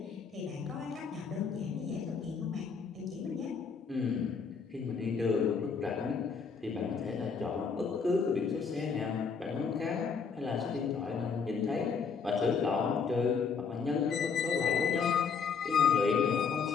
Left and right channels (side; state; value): right; quieter; 5.7 dB